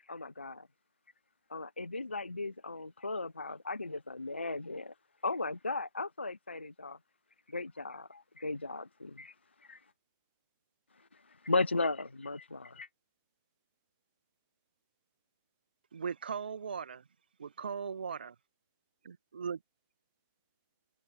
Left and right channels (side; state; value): both; inverted; correlation -0.74